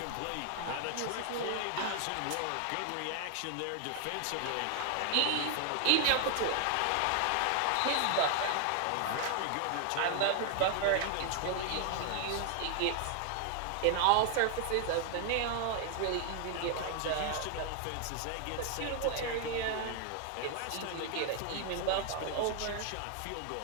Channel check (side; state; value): both; different; correlation 0.00